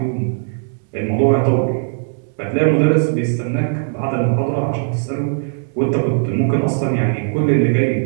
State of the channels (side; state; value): left; silent; digital silence